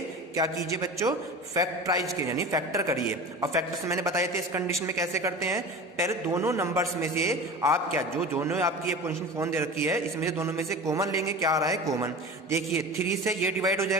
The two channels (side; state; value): both; normal; correlation 0.33